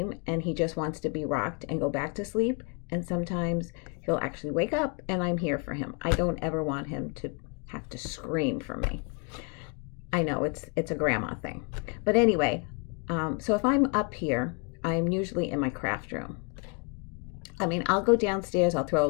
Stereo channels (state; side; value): quieter; right; 33.9 dB